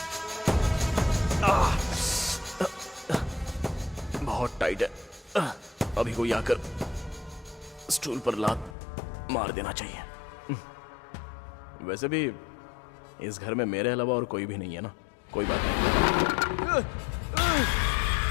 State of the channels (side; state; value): right; drops out; at 8.8 s